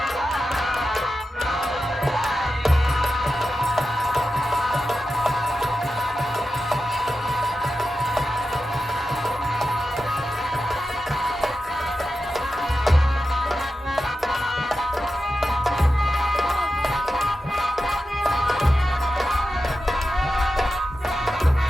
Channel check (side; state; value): both; normal; correlation 0.91